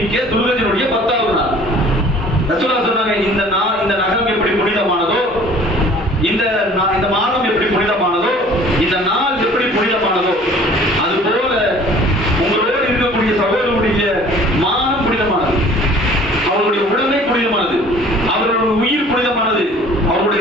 துல்கஜனுடைய 10வது நாள். ரசூலுல்லாஹ் சொன்னாங்க, இந்த நகம் எப்படி புனிதமானதோ, இந்த மாதம் எப்படி புனிதமானதோ, இந்த நாள் எப்படி புனிதமானதோ, அது போல உங்களோடு இருக்கக்கூடிய சகோதரருடைய மானம் புனிதமானது, அவருடைய உடமை புனிதமானது, அவருடைய உயிர் புனிதமானது, அவருடைய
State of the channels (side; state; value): both; normal; correlation 0.50